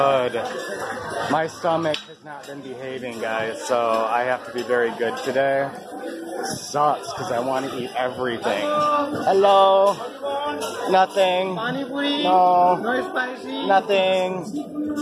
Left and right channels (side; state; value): both; identical; correlation 1.00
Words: My stomach has not been behaving, guys, so I have to be very good today. Sucks, because I want to eat everything. Hello? Nothing. No. No spicy. Nothing.